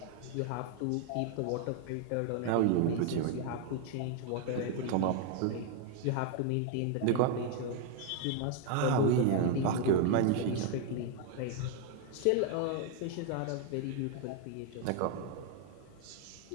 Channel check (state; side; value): different; both; correlation 0.00